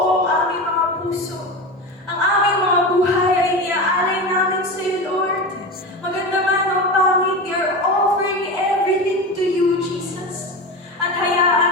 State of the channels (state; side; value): normal; both; correlation 0.24